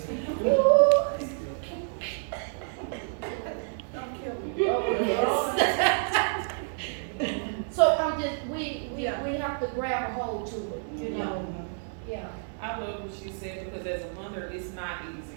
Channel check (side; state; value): left; silent; digital silence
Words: So I'm just, we have to grab a hold to it, you know. Yeah. I love what she said, because as a mother, it's not